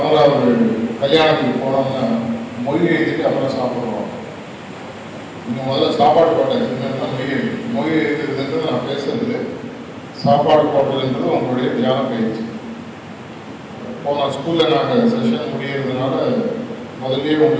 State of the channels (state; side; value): identical; both; correlation 1.00